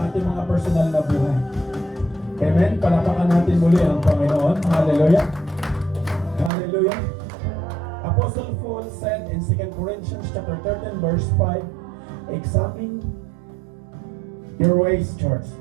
ating mga personal na buhay. Amen? Palapakan natin muli ang Panginoon. Hallelujah. Hallelujah. Apostle Paul said in 2 Corinthians chapter 13 verse 5, examine your ways, church.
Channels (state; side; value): drops out; left; at 6.5 s